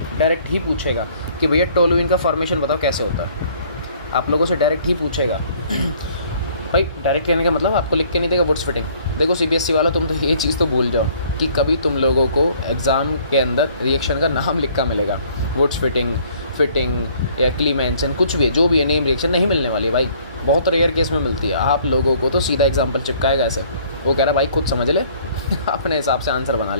डायरेक्ट ही पूछेगा कि भैया टोलुइन का फॉर्मेशन बताओ कैसे होता है। आप लोगों से डायरेक्ट ही पूछेगा भाई। डायरेक्ट कहने का मतलब आपको लिख के नहीं देगा वुड्स फिटिंग। देखो CBSE वालों, तुम तो ये चीज़ तो भूल जाओ कि कभी तुम लोगों को एग्ज़ाम के अंदर रिएक्शन का नाम लिखा मिलेगा, वुड्स फिटिंग या क्लीमेंसन, कुछ भी है, जो भी है, नेम रिएक्शन नहीं मिलने वाली भाई, बहुत रेयर केस में मिलती है। आप लोगों को तो सीधा एग्जाम्पल चिपकाएगा ऐसे, वो कह रहा भाई खुद समझ ले अपने हिसाब से आंसर बना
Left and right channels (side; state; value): both; inverted; correlation -0.58